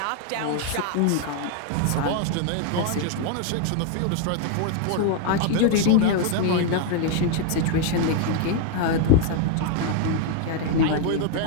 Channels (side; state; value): both; different; correlation 0.00